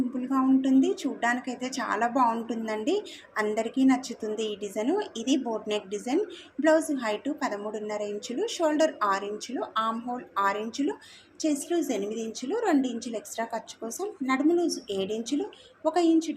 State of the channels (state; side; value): identical; both; correlation 1.00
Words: ఉంటుంది, చూడ్డానికైతే చాలా బాగుంటుందండి. అందరికీ నచ్చుతుంది ఈ డిజైన్. ఇది boat neck design. Blouse height 13.5 ఇంచులు, షోల్డర్ 6 ఇంచులు, ఆర్మ్ హోల్ 6 ఇంచులు, చెస్ట్ లూజ్ 8 ఇంచులు, 2 ఇంచులు ఎక్స్ట్రా ఖర్చు కోసం, నడుము లూజ్ 7 ఇంచులు, 1 ఇంచు